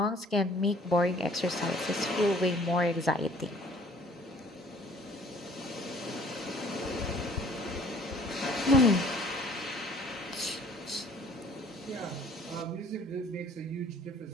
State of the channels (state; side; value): normal; both; correlation 0.55